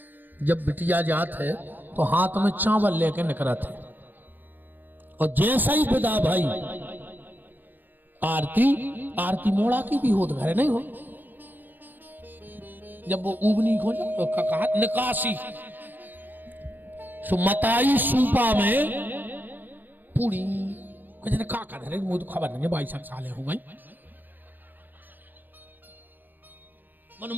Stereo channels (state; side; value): late; left; 0.088 ms